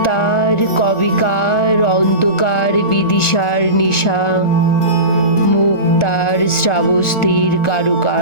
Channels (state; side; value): late; right; 1.4 ms